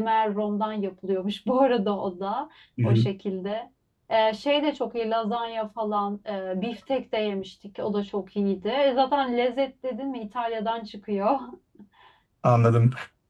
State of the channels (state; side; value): identical; both; correlation 1.00